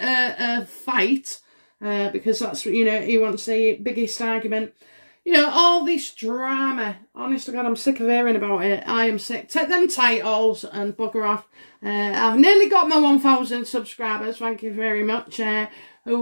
fight. Because that's, you know, he wants the biggest argument. You know, all this drama. Honest to God, I'm sick of hearing about it. I am sick. Take them titles and bugger off. I've nearly got my 1,000 subscribers. Thank you very much.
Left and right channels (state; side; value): inverted; both; correlation -1.00